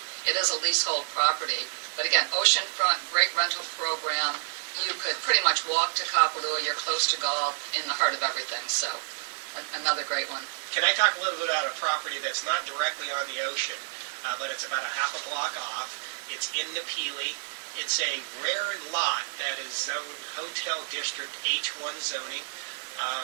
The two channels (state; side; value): silent; left; digital silence